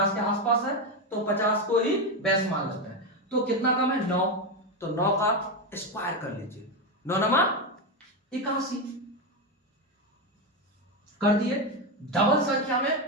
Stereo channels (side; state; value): both; normal; correlation 0.11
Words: के आसपास है तो 50 को ही बेस मान लेते हैं, तो कितना कम है 9, तो 9 का स्क्वायर कर लीजिए, 9 नमा 81 कर दिए। डबल संख्या